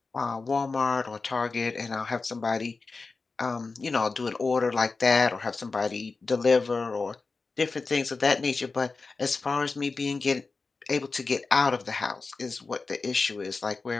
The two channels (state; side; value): quieter; right; 4.1 dB